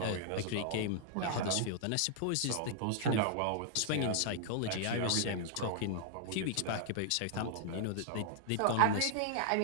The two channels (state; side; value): different; both; correlation -0.01